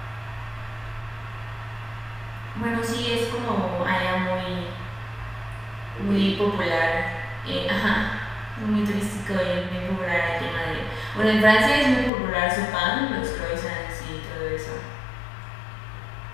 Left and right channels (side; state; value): right; drops out; at 12.1 s